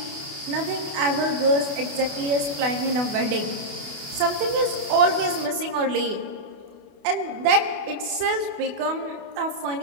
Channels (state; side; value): late; left; 28 ms